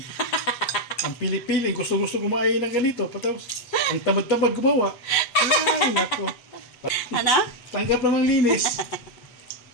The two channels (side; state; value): right; late; 8.0 ms